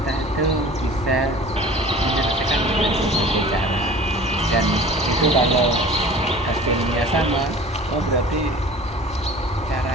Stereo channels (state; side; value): normal; both; correlation 0.43